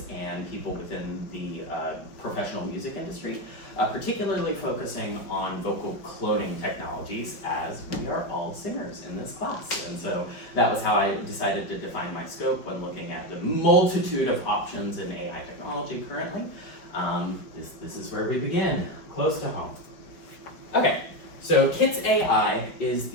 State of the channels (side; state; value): right; late; 4.9 ms